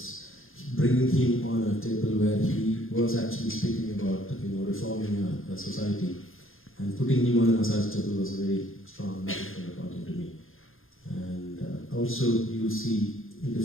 bringing him on a table where he was actually speaking about reforming a society, and putting him on a massage table was a very strong metaphor according to me. And also you'll see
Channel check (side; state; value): right; late; 0.60 ms